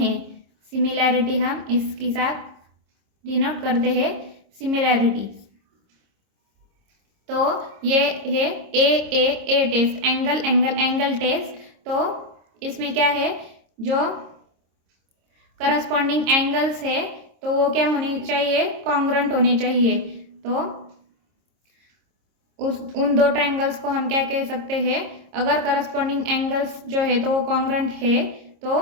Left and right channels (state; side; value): late; left; 26 ms